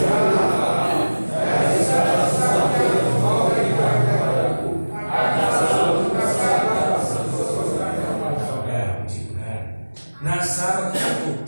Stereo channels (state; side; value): inverted; both; correlation -1.00